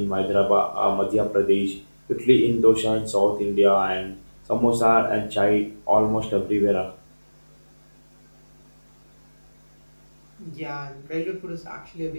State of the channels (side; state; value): both; inverted; correlation -1.00